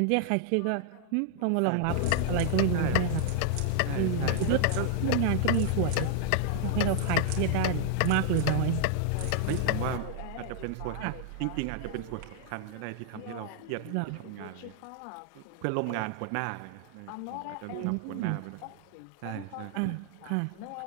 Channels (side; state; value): both; different; correlation 0.00